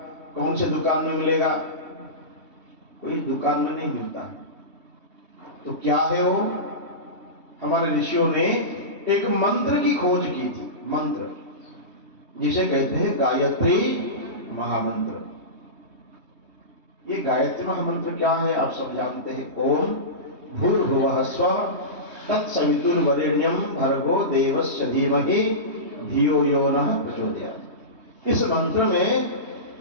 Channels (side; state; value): left; late; 3.2 ms